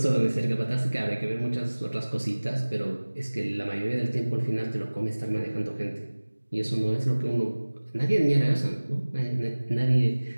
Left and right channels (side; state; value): both; inverted; correlation -1.00